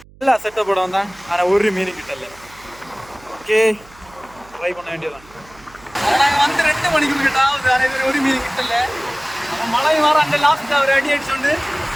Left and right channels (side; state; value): right; noise; hum, 25 dB below the sound